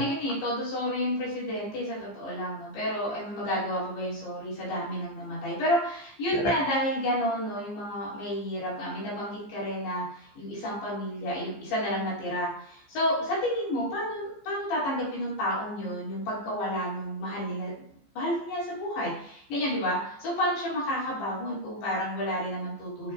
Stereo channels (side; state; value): right; late; 15 ms